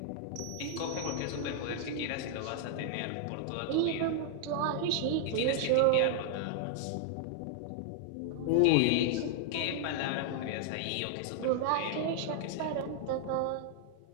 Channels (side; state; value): both; different; correlation -0.01